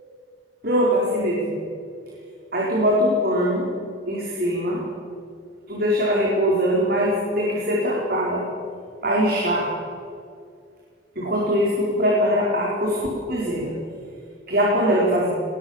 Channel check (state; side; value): normal; both; correlation 0.21